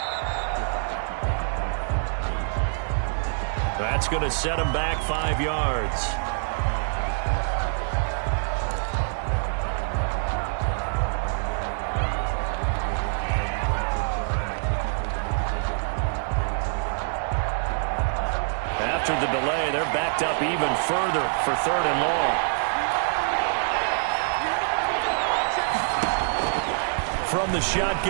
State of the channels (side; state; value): left; silent; digital silence